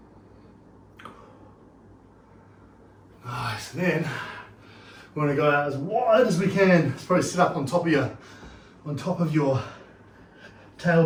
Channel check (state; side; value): identical; both; correlation 1.00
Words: Nice. And then we want to go out as wide as we can. It's probably sit up on top of your